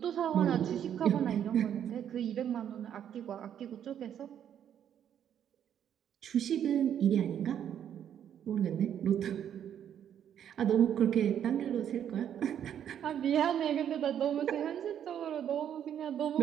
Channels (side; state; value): left; quieter; 9.5 dB